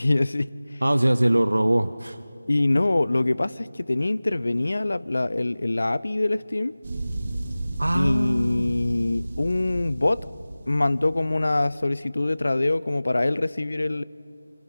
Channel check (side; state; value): both; inverted; correlation -0.98